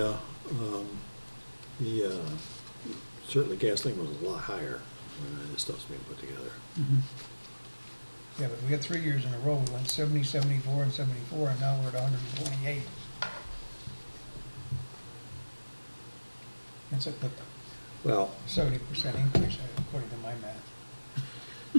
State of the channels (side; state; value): both; inverted; correlation -1.00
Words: certainly gasoline was a lot higher when this stuff's being put together. Mhm. Yeah, but we had 3 years in a row, we went 70, 74, and 74, and now we're at 128. It's a Well, 70% increase, according to my